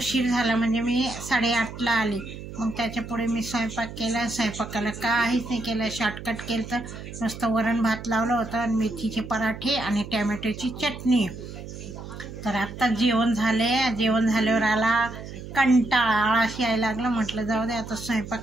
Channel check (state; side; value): noise; right; hum, 11 dB below the sound